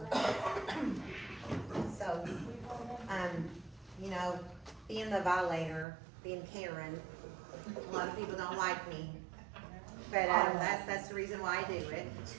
you know, being the violator, being Karen, a lot of people don't like me. But, that's the reason why I do it.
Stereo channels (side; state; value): left; drops out; at 5.9 s